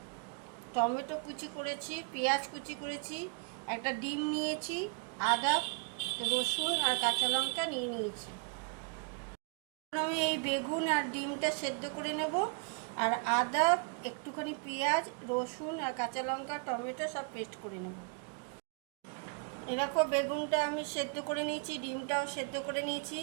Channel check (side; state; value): left; quieter; 36.6 dB